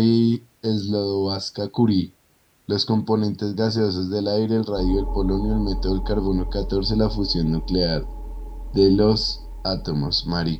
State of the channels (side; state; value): both; identical; correlation 1.00